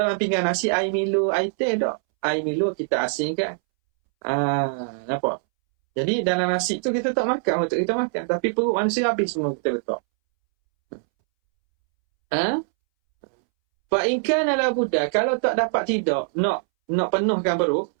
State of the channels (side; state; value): left; silent; 63 dB below the other